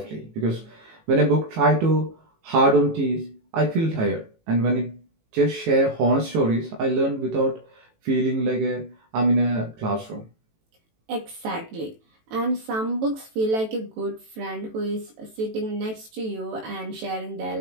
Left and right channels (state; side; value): late; left; 18 ms